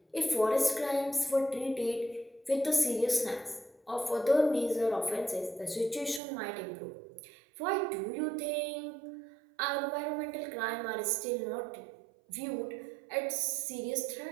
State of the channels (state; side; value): drops out; left; at 6.2 s